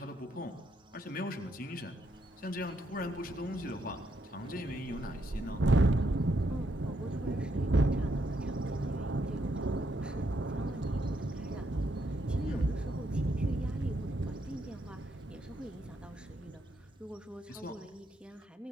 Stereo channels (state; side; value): normal; both; correlation 0.77